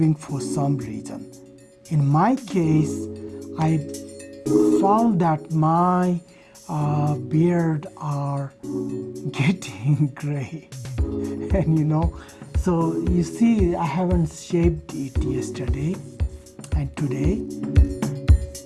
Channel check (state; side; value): identical; both; correlation 1.00